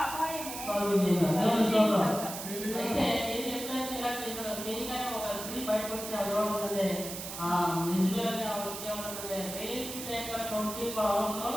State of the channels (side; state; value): right; noise; hiss, 8 dB below the sound